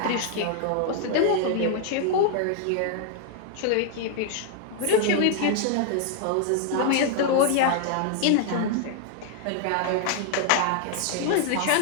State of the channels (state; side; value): different; both; correlation 0.00